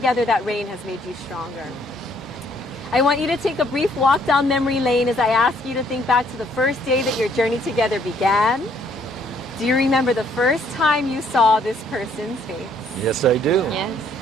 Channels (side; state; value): both; normal; correlation 0.65